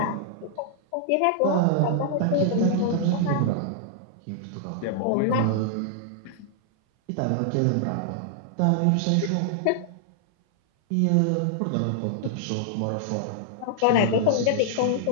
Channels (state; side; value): different; both; correlation -0.01